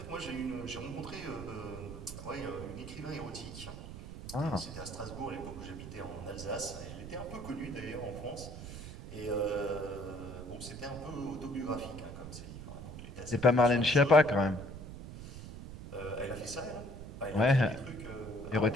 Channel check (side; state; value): right; noise; rumble, 10 dB below the sound